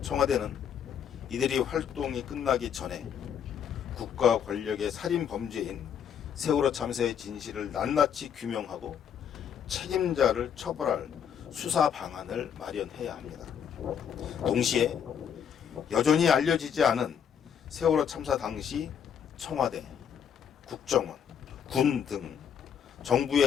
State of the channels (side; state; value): right; quieter; 8.2 dB